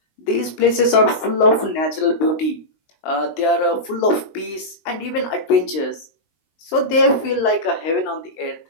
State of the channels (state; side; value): late; right; 19 ms